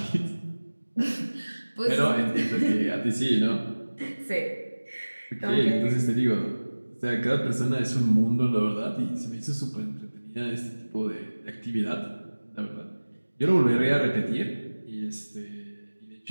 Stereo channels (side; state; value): both; inverted; correlation -1.00